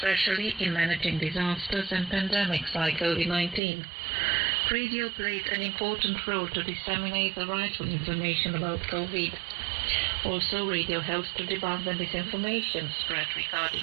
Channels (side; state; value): left; drops out; at 3.6 s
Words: in managing disasters and pandemics like COVID-19. Radio played an important role to disseminate the rightful information about COVID. Also, radio helps to debunk the misinformation spread